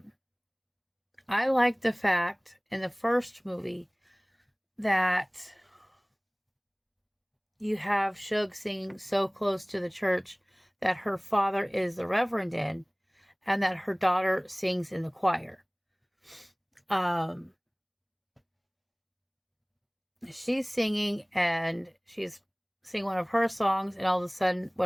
like the fact in the first movie that you have Shug singing so close to the church that her father is the reverend in, and that her daughter sings in the choir. She's singing, and she's singing one of her songs, and all of a sudden,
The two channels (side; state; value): both; identical; correlation 1.00